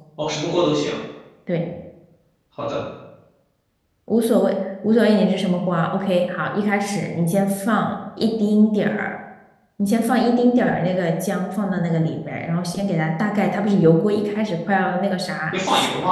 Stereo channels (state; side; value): identical; both; correlation 1.00